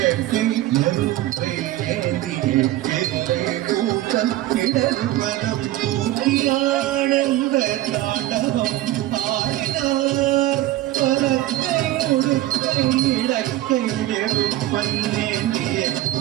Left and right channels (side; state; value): left; quieter; 15.3 dB